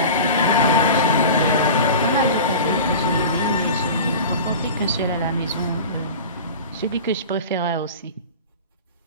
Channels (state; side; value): inverted; both; correlation -0.34